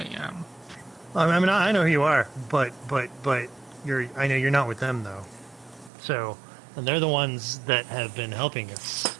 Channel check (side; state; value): left; drops out; at 5.9 s